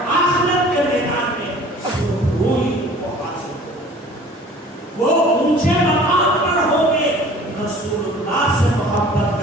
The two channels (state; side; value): normal; both; correlation 0.47